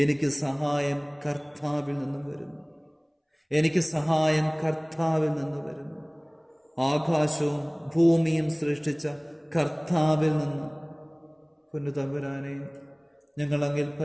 എനിക്ക് സഹായം കർത്താവിൽ നിന്നും വരുന്നു. എനിക്ക് സഹായം കർത്താവിൽ നിന്ന് വരുന്നു. ആകാശവും ഭൂമിയും സൃഷ്ടിച്ച കർത്താവിൽ നിന്ന്. പൊന്നുതമ്പുരാനെ, ഞങ്ങൾ അങ്ങിൽ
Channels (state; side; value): identical; both; correlation 1.00